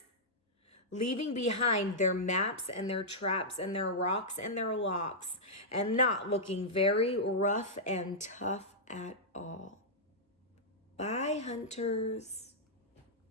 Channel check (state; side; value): normal; both; correlation -0.10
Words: leaving behind their maps and their traps and their rocks and their locks, and not looking very rough and tough at all. Bye, hunters.